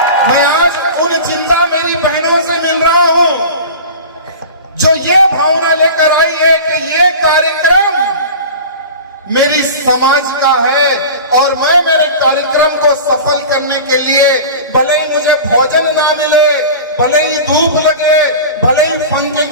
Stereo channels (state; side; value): inverted; both; correlation -0.34